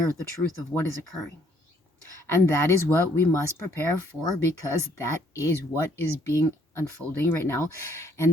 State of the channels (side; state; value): both; normal; correlation 0.65